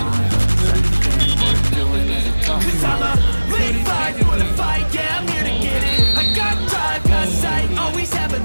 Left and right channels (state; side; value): inverted; both; correlation -1.00